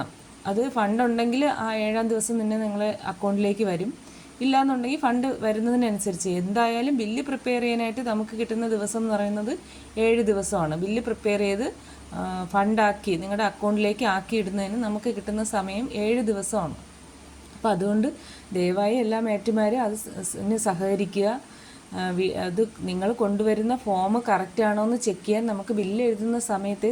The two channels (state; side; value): identical; both; correlation 1.00